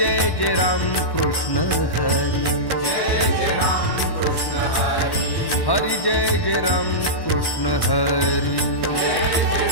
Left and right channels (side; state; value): right; late; 1.1 ms